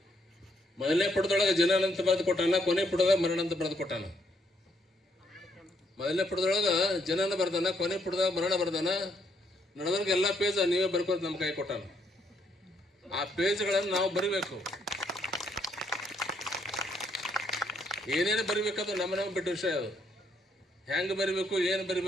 ಮೊದಲನೇ ಪುಟದೊಳಗೆ ಜನನ ಅಂತ ಬರೆದು ಕೊಟ್ಟಾನ, ಕೊನೆ ಪುಟದಾಗ ಮರಣ ಅಂತ ಬರೆದು ಕೊಟ್ಟಾನ. ಮೊದಲನೇ ಪುಟದೊಳಗೆ ಜನನ ಬರ್ದಾನ, ಕೊನೆ ಪುಟದಾಗ ಮರಣ ಬರ್ದಾನ. ನಡೆದವ್ರಿಗೆ ಎಲ್ಲ ಪೇಜ್ ನೀವೇ ಬರ್ಕೋದು ನಮ್ಮ ಕೈ ಕೊಟ್ಟಾನ. ಆ ಪೇಜ್ಗಳನ್ನು ನಾವು ಬರಿಬೇಕು. ಏನೇನು ಬರಿಬೇಕದು ನಮಗೆ ಬಿಟ್ಟ ವಿಷಯ. ಅದು ಹೆಂಗೆ ಬರಿಬೇಕು, ಏನು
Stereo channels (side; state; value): both; normal; correlation 0.72